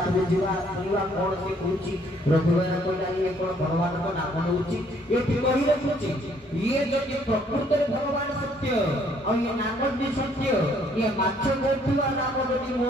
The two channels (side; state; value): both; normal; correlation 0.64